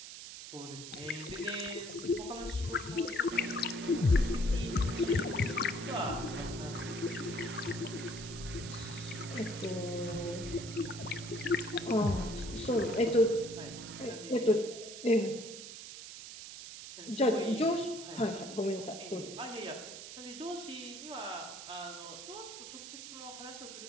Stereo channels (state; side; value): noise; right; hiss, 11 dB below the sound